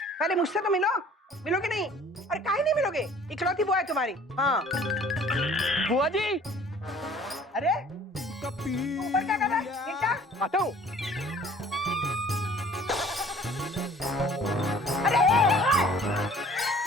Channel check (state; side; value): normal; both; correlation 0.51